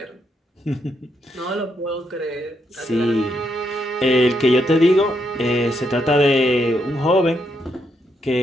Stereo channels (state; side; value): normal; both; correlation 0.79